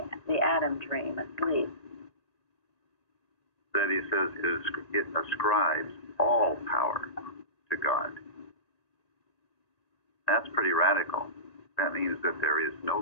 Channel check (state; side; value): late; right; 1.9 ms